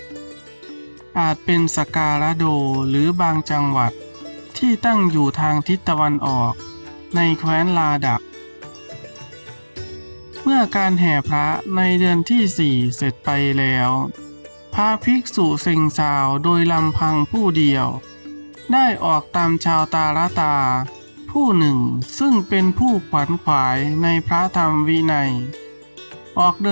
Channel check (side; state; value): both; inverted; correlation -1.00